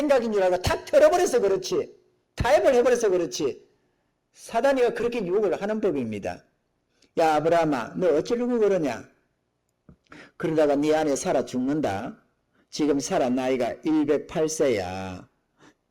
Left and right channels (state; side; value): identical; both; correlation 1.00